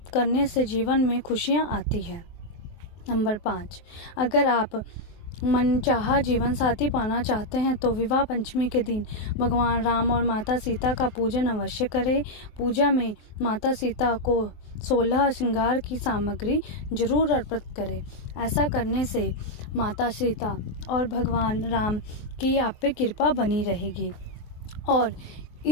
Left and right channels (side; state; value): right; late; 24 ms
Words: करने से जीवन में खुशियां आती है। नंबर 5, अगर आप मनचाहा जीवन साथी पाना चाहते हैं तो विवाह पंचमी के दिन भगवान राम और माता सीता का पूजन अवश्य करें। पूजा में माता सीता को 16 श्रृंगार की सामग्री जरूर अर्पित करें। ऐसा करने से माता सीता और भगवान राम की आप पे कृपा बनी रहेगी। और